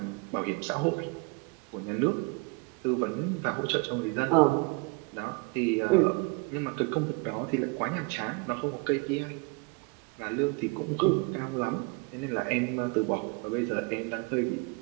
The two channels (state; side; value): quieter; left; 27.9 dB